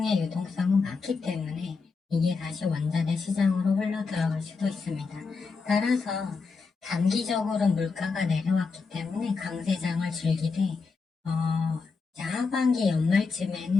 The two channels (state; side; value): quieter; right; 4.7 dB